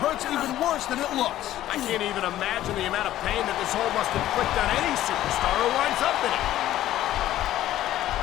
even worse than it looks. I can't even imagine the amount of pain that this hole must inflict on any superstar who winds up in it.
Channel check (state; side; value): quieter; right; 13.5 dB